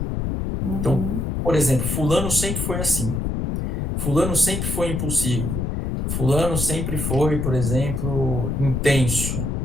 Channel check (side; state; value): left; noise; rumble, 1 dB below the sound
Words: Então, por exemplo, fulano sempre foi assim, fulano sempre foi impulsivo, fulano sempre foi, por exemplo, intenso,